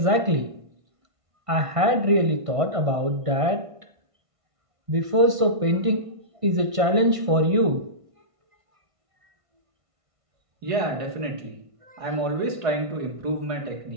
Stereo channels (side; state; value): left; late; 1.5 ms